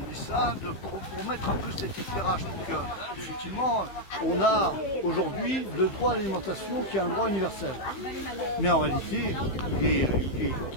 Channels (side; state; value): right; late; 15 ms